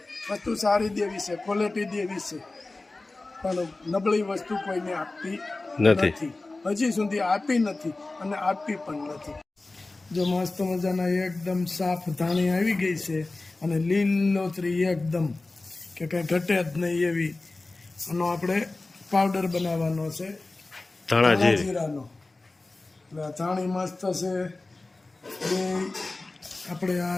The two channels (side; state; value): right; quieter; 3.2 dB